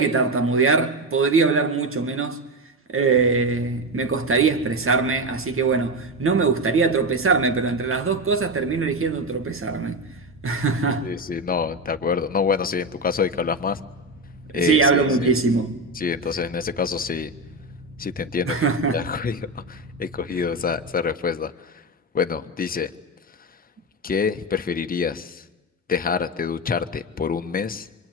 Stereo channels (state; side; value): normal; both; correlation 0.15